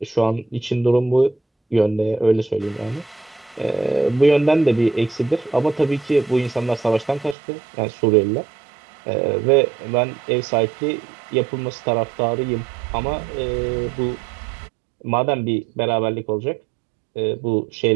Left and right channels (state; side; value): drops out; left; at 7.4 s